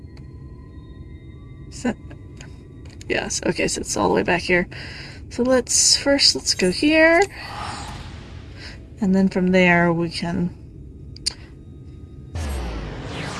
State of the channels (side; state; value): both; identical; correlation 1.00